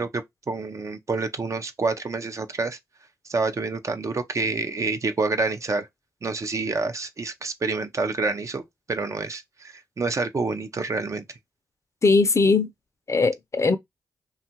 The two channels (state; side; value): normal; both; correlation 0.59